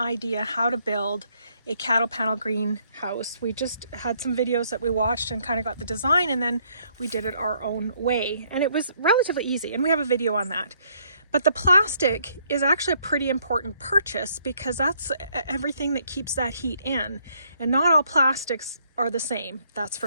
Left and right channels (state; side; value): inverted; both; correlation -0.68